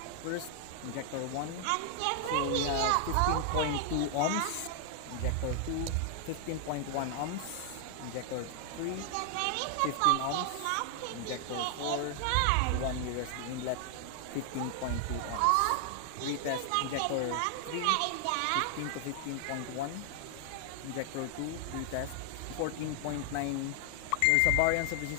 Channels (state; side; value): different; both; correlation 0.00